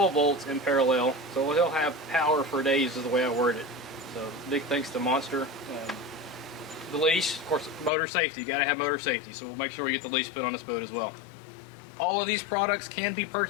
volts in parallel, so he'll have power for days is the way I word it. So big thanks to Monster. The leash, of course, motor safety, you got to have motor safety, so we'll make sure we get the leash put on this boat as well. All of these products can be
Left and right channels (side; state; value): right; drops out; at 7.9 s